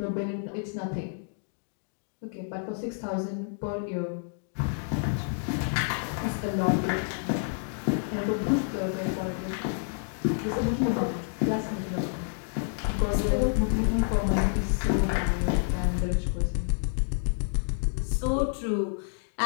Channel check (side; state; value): right; silent; digital silence